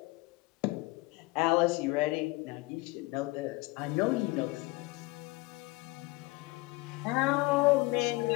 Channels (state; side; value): quieter; right; 23.2 dB